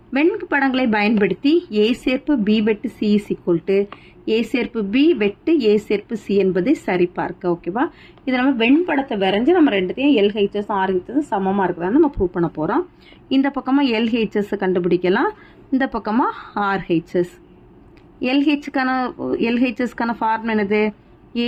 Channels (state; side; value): identical; both; correlation 1.00